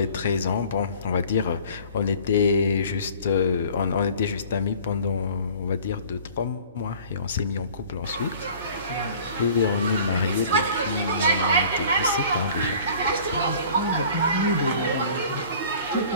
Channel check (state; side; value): inverted; both; correlation -0.48